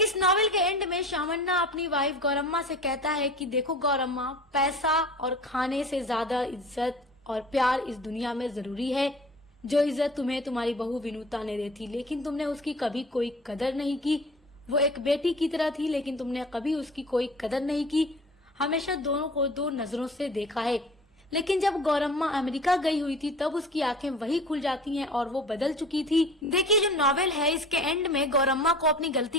नॉवेल के एंड में शामन्ना अपनी वाइफ गौरम्मा से कहता है कि देखो गौरम्मा, पैसा और खाने से ज्यादा इज्जत और प्यार इस दुनिया में जरूरी है। जो इज्जत तुम्हें तुम्हारी बहू विनुता ने दी थी, लेकिन तुमने उसकी कभी कोई कदर नहीं की। वो एक बेटी की तरह थी, लेकिन तुमने कभी उसकी कोई कदर नहीं की, हमेशा दोनों को दो नजरों से देखा है। लेकिन जब गौरम्मा अमेरिका गई हुई थी तब उसकी आंखें वही खुल जाती हैं और वो बदल चुकी थी। देखिए, जो नॉवेल है इसके एंड में गौरम्मा को अपनी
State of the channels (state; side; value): normal; both; correlation 0.41